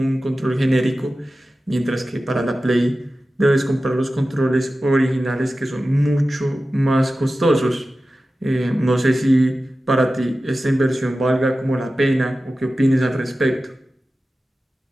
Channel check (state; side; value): normal; both; correlation 0.94